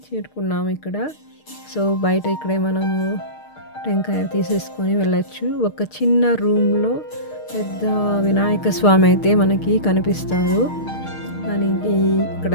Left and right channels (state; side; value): late; right; 6.5 ms